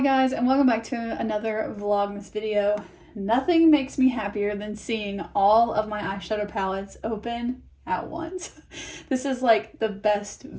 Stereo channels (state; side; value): identical; both; correlation 1.00